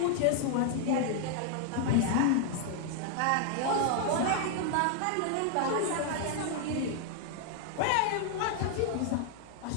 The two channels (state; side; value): different; both; correlation 0.00